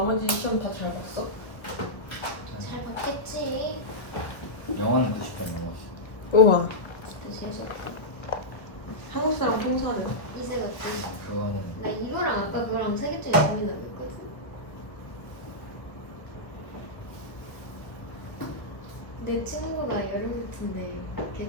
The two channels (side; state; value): right; late; 1.3 ms